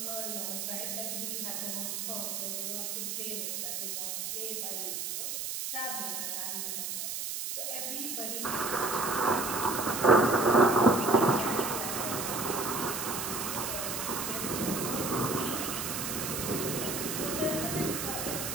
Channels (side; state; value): right; noise; hiss, 3 dB below the sound